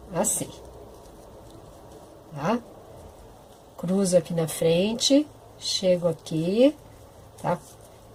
assim, tá? Cruzo aqui na frente, chego aqui, tá?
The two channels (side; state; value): both; identical; correlation 1.00